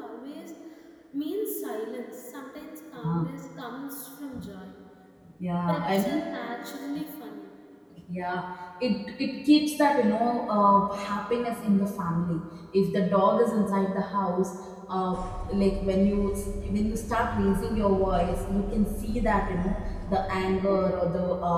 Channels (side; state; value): both; identical; correlation 1.00